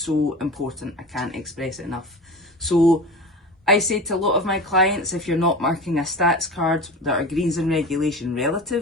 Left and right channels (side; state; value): both; normal; correlation 0.32